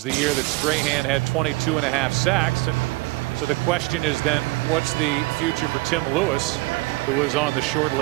the year that Strahan had 22.5 sacks. And so the question is then, what's the future for Tim Lewis, who was on the short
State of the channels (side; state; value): left; quieter; 22.5 dB